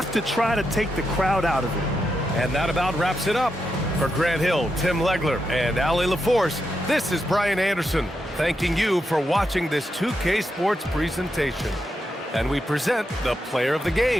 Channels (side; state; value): both; normal; correlation 0.85